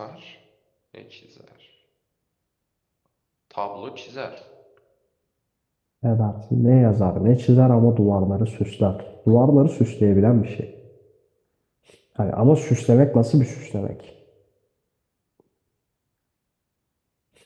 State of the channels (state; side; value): identical; both; correlation 1.00